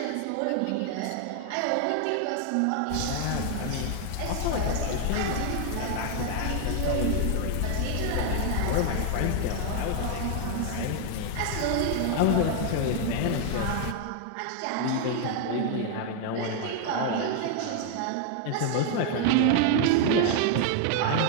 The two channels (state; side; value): different; both; correlation 0.00